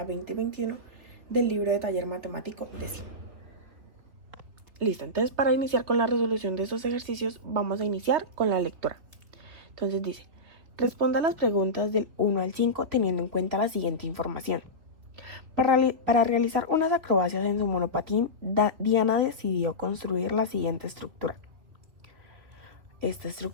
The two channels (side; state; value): left; late; 3.4 ms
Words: 20 y 21 del libro de taller matemático décimo. Listo, entonces para iniciar con la resolución de estos ejercicios vamos a iniciar con la lectura. Entonces dice, responda las preguntas del 1 al 5 teniendo en cuenta la siguiente información. Para realizar unas acrobacias en su monopatín, Diana decidió construir la siguiente estructura. Esta